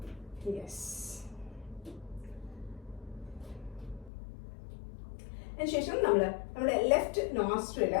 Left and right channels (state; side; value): drops out; right; at 4.1 s